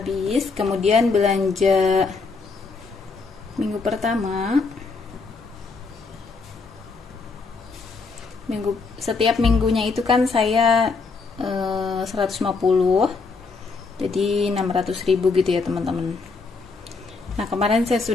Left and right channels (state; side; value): quieter; right; 4.4 dB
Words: Kemudian belanja minggu pertama. Setiap minggunya itu kan saya 150, jadi 600.000 gitu ya teman-teman. Nah, kemarin saya